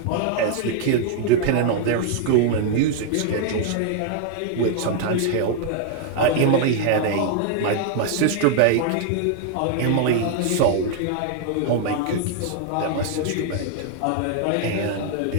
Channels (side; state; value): both; different; correlation 0.00